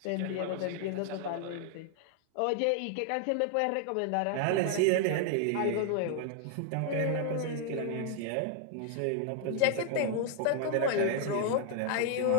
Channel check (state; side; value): different; both; correlation 0.00